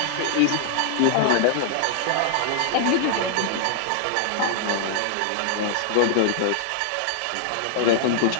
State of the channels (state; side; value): different; both; correlation -0.01